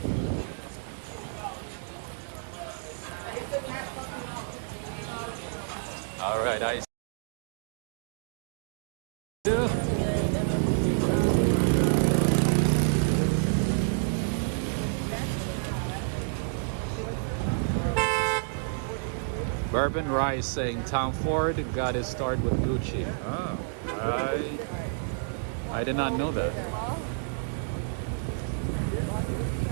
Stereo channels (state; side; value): silent; left; digital silence